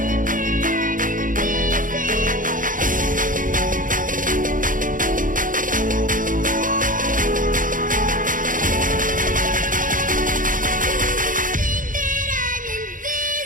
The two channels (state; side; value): late; left; 0.39 ms